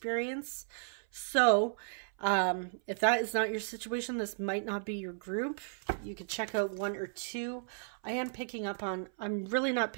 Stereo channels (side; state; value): left; silent; 55 dB below the other